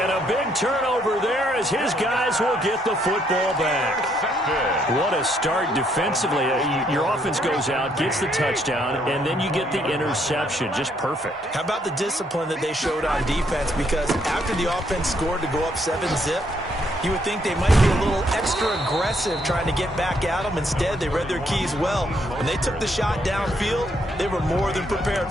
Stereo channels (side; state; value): both; normal; correlation 0.71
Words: a big turnover there as his guys will get the football back. What a start defensively. Your offense goes out, gets the touchdown, and then you get the interception. Just perfect. How about the discipline that they showed on defense? Because after the offense scored to go up 7-zip, you would think they might be a little extra aggressive trying to get back at them. Instead, they read their keys well. When they took the shot downfield, they were more than prepared